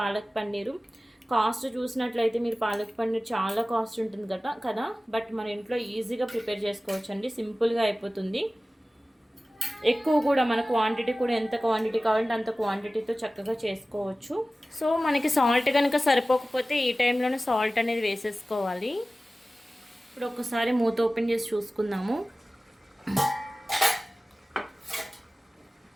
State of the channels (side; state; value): both; normal; correlation 0.96